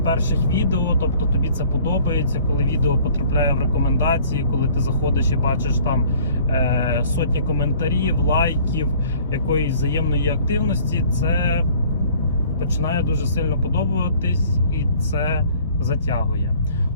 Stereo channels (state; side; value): inverted; both; correlation -0.53